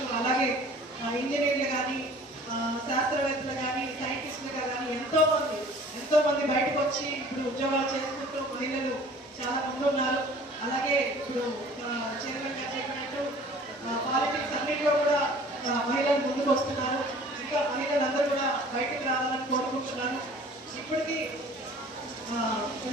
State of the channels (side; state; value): both; normal; correlation 0.48